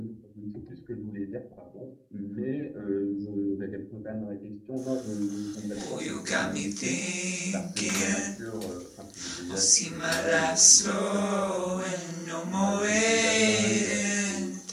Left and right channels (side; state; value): both; identical; correlation 1.00